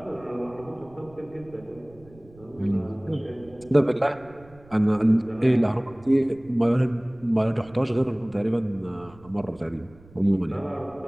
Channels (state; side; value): noise; right; rumble, 24 dB below the sound